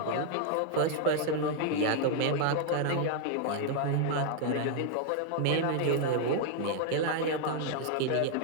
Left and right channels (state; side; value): different; both; correlation 0.00